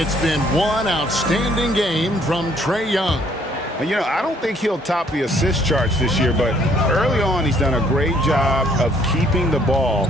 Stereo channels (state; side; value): normal; both; correlation 0.64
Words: been one outstanding game from Trae Young. And, you know, I don't think he'll top the assist charts this year, but early on he's done a great job of keeping the ball